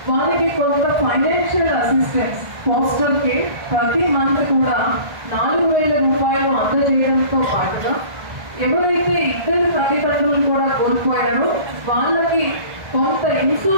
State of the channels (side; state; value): left; late; 1.5 ms